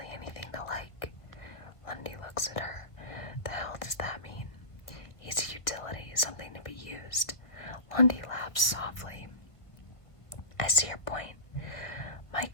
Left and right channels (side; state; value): right; late; 1.3 ms